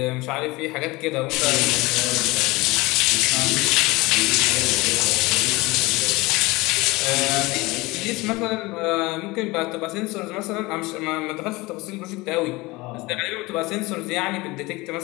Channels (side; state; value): right; quieter; 22.4 dB